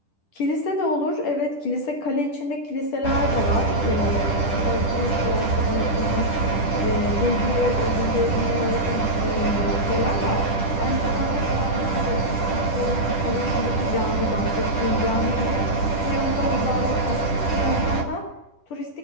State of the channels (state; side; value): late; right; 10 ms